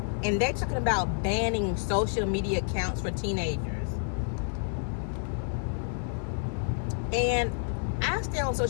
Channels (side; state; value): right; silent; 58 dB below the other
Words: and they're talking about banning social media accounts for teenagers. And I stay on